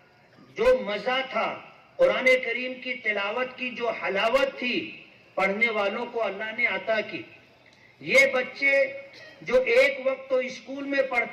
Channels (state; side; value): identical; both; correlation 1.00